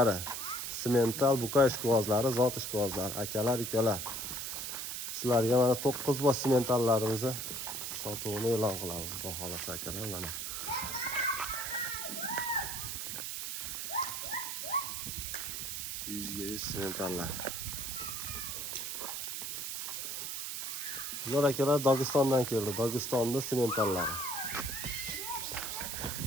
semental buqa ishqibozlari, zot ishqibozlari, akalar, ukalar. Sizlarga mana 9 bosh sementallarimizni sotuvini e'lon qilamiz. Xudo xolasa akalar, mana. Yuzga 100 sementallar. Bular akalar Dog'istondan keldi. Dog'istonda sementallari.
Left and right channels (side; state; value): right; noise; hiss, 4 dB below the sound